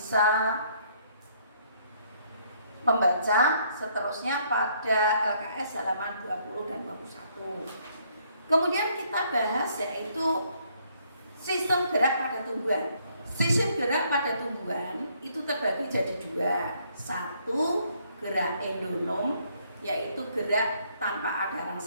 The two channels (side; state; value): both; inverted; correlation -0.67